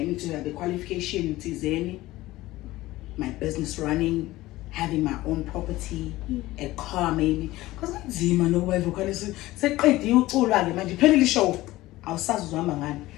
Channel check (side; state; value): right; quieter; 17.6 dB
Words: need to have the qualification, my business running, having my own property, a car maybe. Because I'm Zima, no way, vocalist. Say, you all right, man. You pay the show. I'll start with one man.